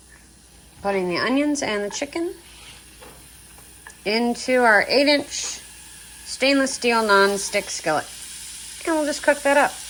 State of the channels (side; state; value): both; identical; correlation 1.00